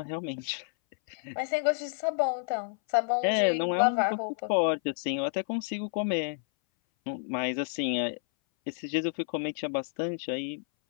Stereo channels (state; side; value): silent; right; 58 dB below the other